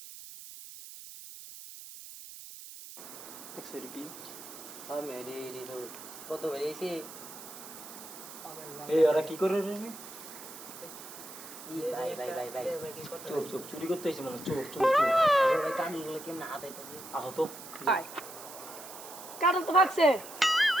দেখছো কি আমি রে তো কত বেরিয়েছে এই ওরা কি করে রে ভাই ভাই ভাই ভাই চুপ চুপ চুরি করতে এসে মানে চুপ চুপ চুপ ভাই কানগুলো কেমন হাত আইতাছে আহ তো আয় কাটল তো ভাগছে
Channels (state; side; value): noise; right; hiss, 14 dB below the sound